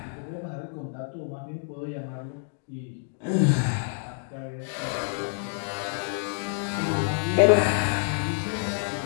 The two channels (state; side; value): silent; right; digital silence